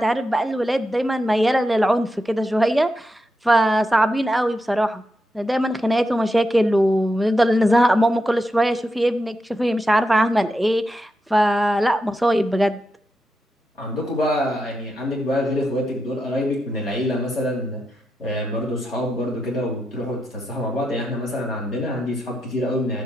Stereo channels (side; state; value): both; normal; correlation 0.86